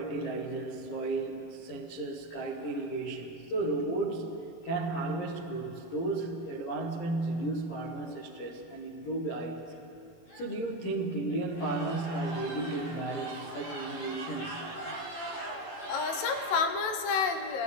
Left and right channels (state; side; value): late; right; 18 ms